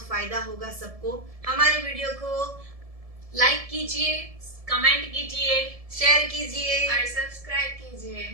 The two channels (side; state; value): left; late; 1.7 ms